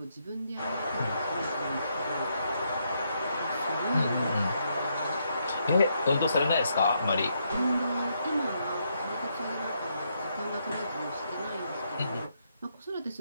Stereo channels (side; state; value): both; inverted; correlation -0.77